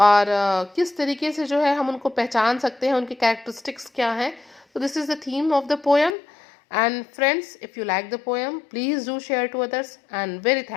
किस तरीके से जो है हम उनको पहचान सकते हैं, उनके कैरेक्टरिस्टिक्स क्या हैं. So this is the theme of the poem. And friends, if you like the poem, please do share to others, and very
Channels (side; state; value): right; drops out; at 6.2 s